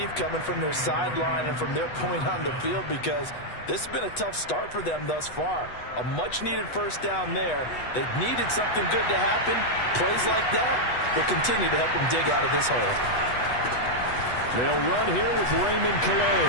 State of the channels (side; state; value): right; late; 8.1 ms